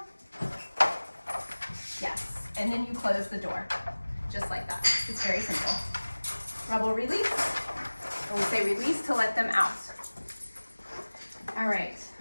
Yes, and then you close the door, just like that. It's very simple. Rebel, release. And we say release to let them out. All right,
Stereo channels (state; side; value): inverted; both; correlation -1.00